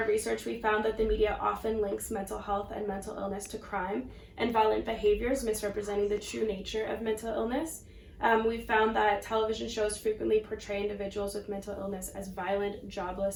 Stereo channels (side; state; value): both; identical; correlation 1.00